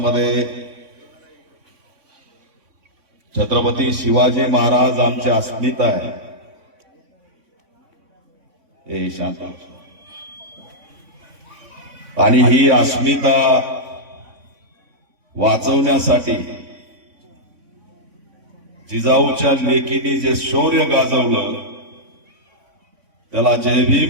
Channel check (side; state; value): left; late; 3.5 ms